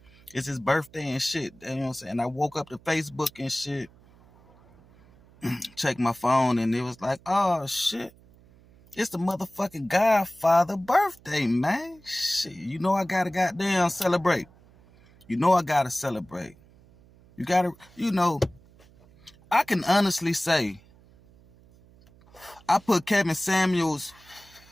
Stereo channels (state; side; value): noise; right; hum, 27 dB below the sound